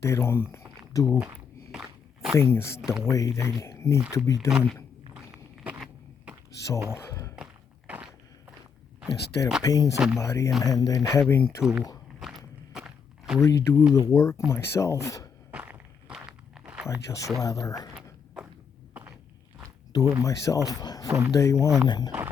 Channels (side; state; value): right; quieter; 6.5 dB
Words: don't do things the way they need to be done. So instead of paying somebody and then having to redo the work myself, I just rather do it myself from day one